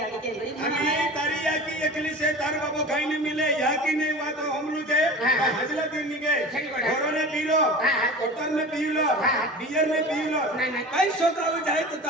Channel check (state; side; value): normal; both; correlation 0.35